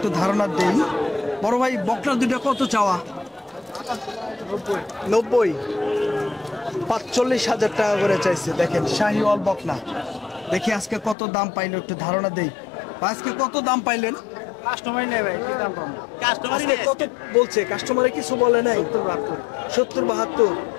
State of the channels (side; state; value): right; drops out; at 11.2 s